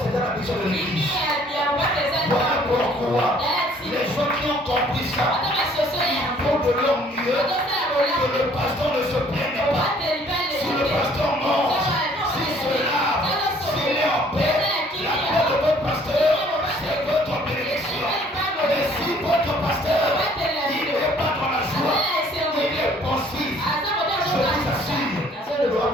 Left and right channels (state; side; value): normal; both; correlation 0.59